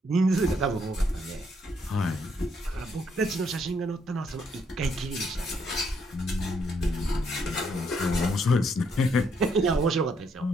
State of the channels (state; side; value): normal; both; correlation 0.72